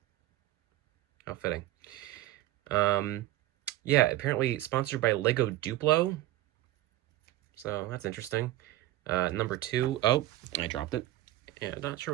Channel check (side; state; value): left; quieter; 15.7 dB